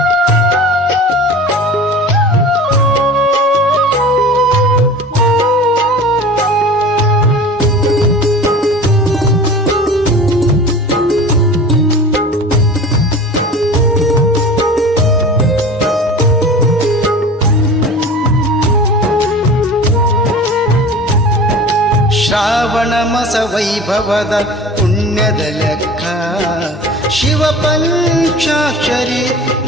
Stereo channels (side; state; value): both; normal; correlation 0.38